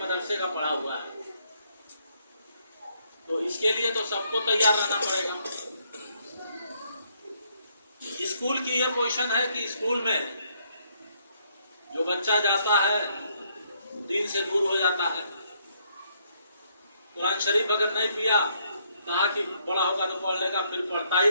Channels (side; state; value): both; inverted; correlation -0.71